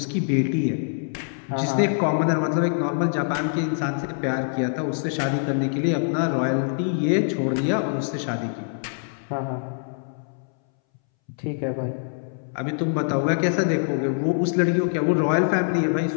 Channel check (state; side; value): silent; right; 62 dB below the other